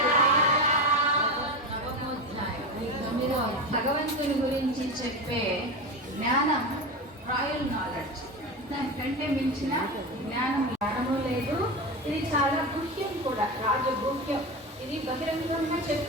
భగవంతుని గురించి చెప్పే జ్ఞానం రాయల్ నాలెడ్జ్, దానికంటే మించిన జ్ఞానము లేదు. ఇది చాలా గుహ్యం కూడా, రాజగుహ్యం. ఇది బహిరంగంగా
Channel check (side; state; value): both; normal; correlation 0.21